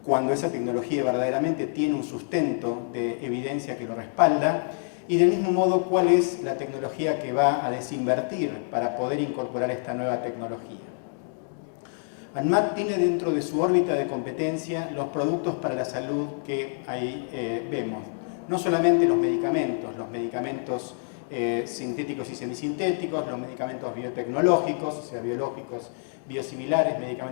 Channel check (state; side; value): silent; right; 60 dB below the other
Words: cuando esa tecnología verdaderamente tiene un sustento de evidencia que lo respalda, y del mismo modo cuál es la tecnología que va a desinvertir para poder incorporar esta nueva tecnología. ANMAT tiene dentro de su órbita de competencia los productos para la salud que ahí vemos. No solamente los medicamentos sintéticos y semisintéticos, los medicamentos biotecnológicos, o sea, biológicos, biosimilares,